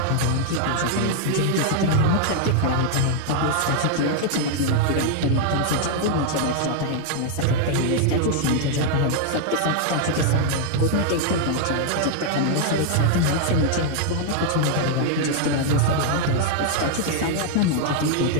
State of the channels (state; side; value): different; both; correlation 0.00